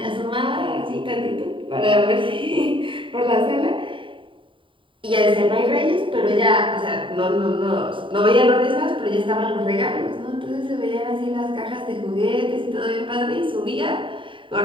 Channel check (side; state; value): left; late; 0.25 ms